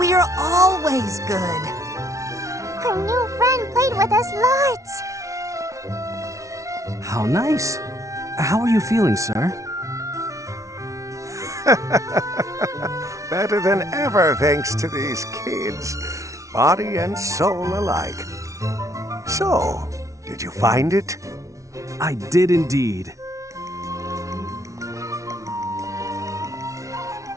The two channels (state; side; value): late; left; 0.15 ms